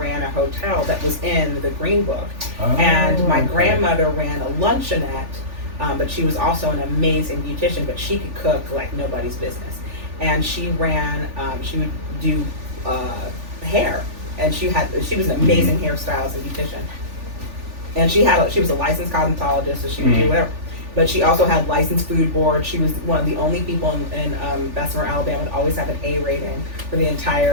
a hotel that was in The Green Book. And my grandmother ran a luncheonette, but she was also an amazing beautician, but she could cook like nobody's business. And she would do hair, and she was an amazing hairstylist and beautician. And she was a licensed cosmetologist, so she would do whatever. But she also had licensed food board. She was one of the only people in Bessemer, Alabama, to always have an A rating for the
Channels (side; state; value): left; late; 3.4 ms